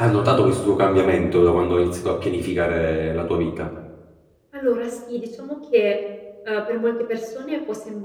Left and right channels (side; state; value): both; identical; correlation 1.00